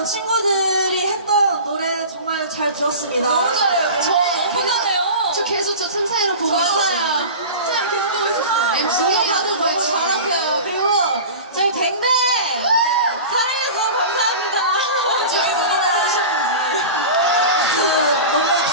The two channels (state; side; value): inverted; both; correlation -0.33